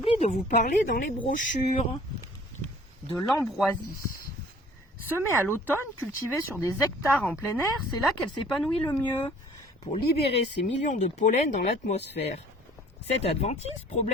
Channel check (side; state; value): both; normal; correlation 0.52